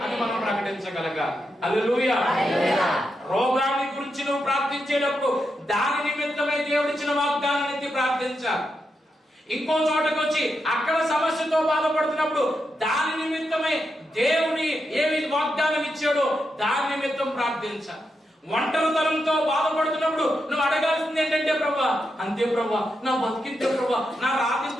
అని మనం ప్రకటించగలగాలి. హల్లెలూయా. రోగాన్ని గురించి నువ్వు ప్రార్థించేటప్పుడు దాని నిమిత్తమై దేవుడిచ్చిన వాగ్దానాన్ని ఎత్తి ప్రార్థించాలి. ఇంకో చోటకు వచ్చి అక్కడ సమస్యతో బాధపడుతున్నప్పుడు దాని నిమిత్తమై దేవుని ఏమి వాగ్దానం ఇచ్చాడో దాని నిమిత్తం ప్రార్థించాలి. ఒంటరితనంతో బాధపడుతున్నప్పుడు నువ్వు అడగాల్సింది ఏంటంటే, ప్రభా అంతే ప్రభా, నా బతికింతే ప్రభా, నా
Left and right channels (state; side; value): normal; both; correlation 0.85